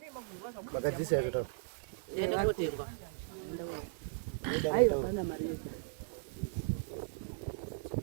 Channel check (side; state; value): left; silent; digital silence